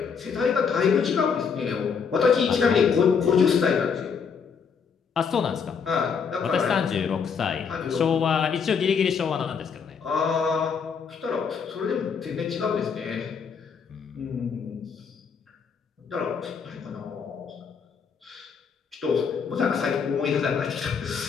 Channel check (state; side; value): quieter; right; 6.2 dB